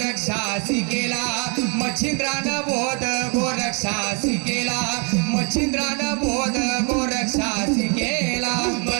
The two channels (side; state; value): left; quieter; 35.3 dB